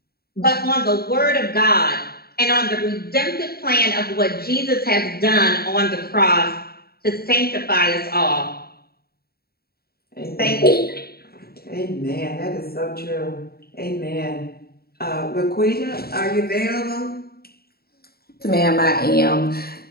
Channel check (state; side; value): late; right; 0.45 ms